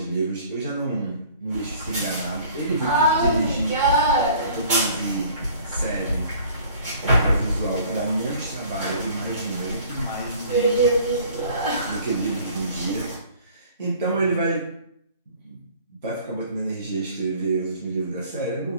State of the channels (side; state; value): both; inverted; correlation -0.52